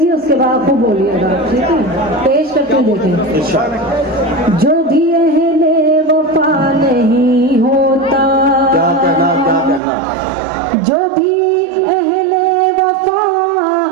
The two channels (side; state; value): left; drops out; at 9.8 s